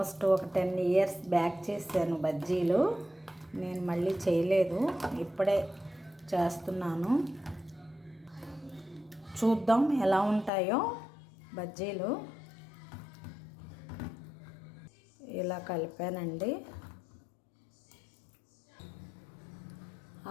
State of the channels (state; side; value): drops out; right; at 10.5 s